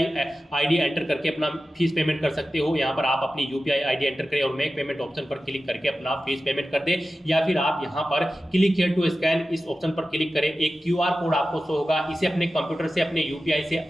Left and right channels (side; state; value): both; normal; correlation 0.94